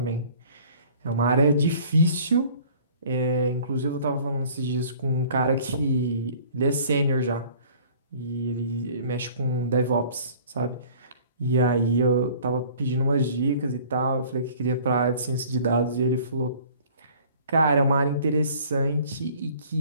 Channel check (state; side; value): inverted; both; correlation -0.51